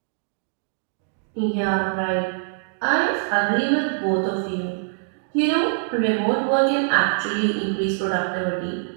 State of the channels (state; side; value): silent; left; digital silence